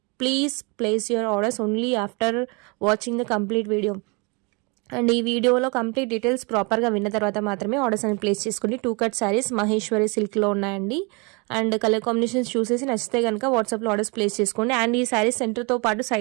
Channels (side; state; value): left; quieter; 30.6 dB